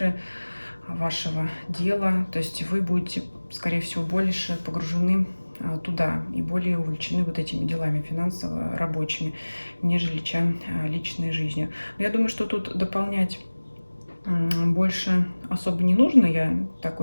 вашего дела. То есть вы будете, скорее всего, больше погружены туда и более увлечены вот этими делами финансово-рабочими, нежели чем личной жизнью. Но я думаю, что тут дополнять больше особо не нужно. Я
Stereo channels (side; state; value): both; inverted; correlation -1.00